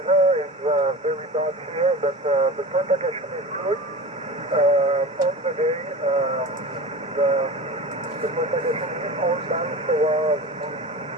is very bad here, but the propagation is good. On the day, the propagation is all done, so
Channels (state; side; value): normal; both; correlation 0.31